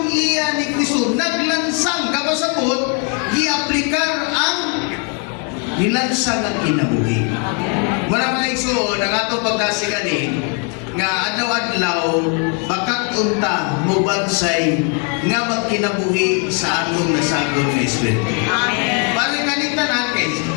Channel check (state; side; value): quieter; right; 35.1 dB